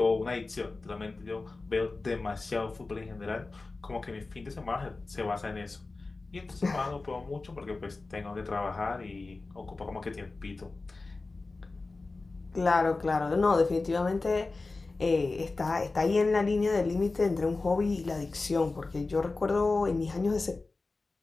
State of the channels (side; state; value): right; quieter; 3.6 dB